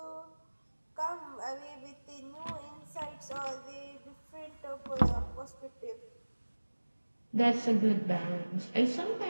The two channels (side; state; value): both; inverted; correlation -1.00